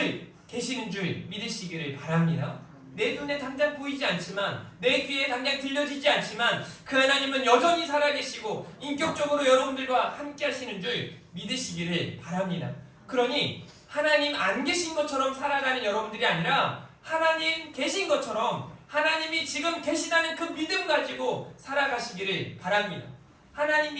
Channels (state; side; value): identical; both; correlation 1.00